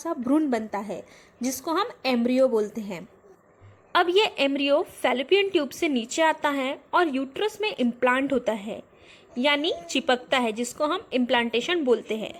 भ्रूण बनता है जिसको हम एम्ब्रियो बोलते हैं। अब ये एम्ब्रियो फैलोपियन ट्यूब से नीचे आता है और यूट्रस में इम्प्लांट होता है, यानी चिपकता है, जिसको हम इम्प्लांटेशन बोलते हैं।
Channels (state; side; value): identical; both; correlation 1.00